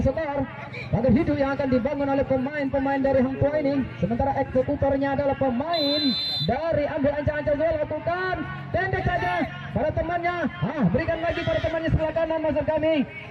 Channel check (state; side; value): identical; both; correlation 1.00